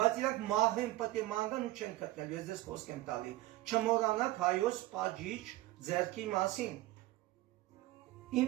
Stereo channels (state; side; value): quieter; left; 17.3 dB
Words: իրանք մահվեն պետք է մանրան ու չեն գտնել, ես ձեզ խոսք եմ տալի։ Չմոռանաք հայոց պատժիչ ձեռքի մասին։